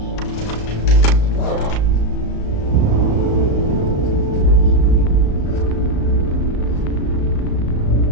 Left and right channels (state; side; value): late; right; 35 ms